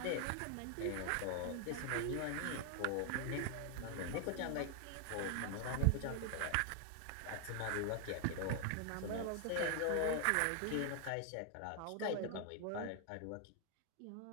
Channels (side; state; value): both; different; correlation 0.00